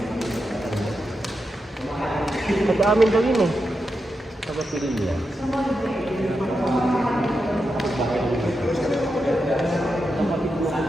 Pag-amin daw yun eh. Sabat nila niya.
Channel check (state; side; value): normal; both; correlation 0.87